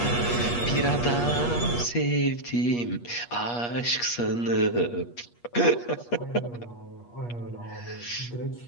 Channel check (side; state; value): right; late; 8.4 ms